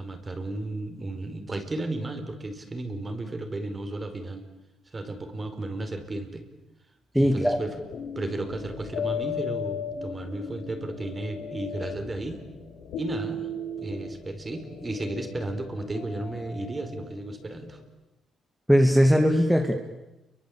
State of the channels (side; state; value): both; normal; correlation 0.90